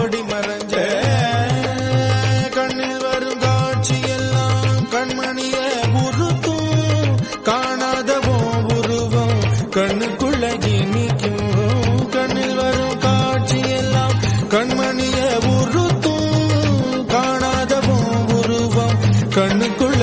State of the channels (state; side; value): identical; both; correlation 1.00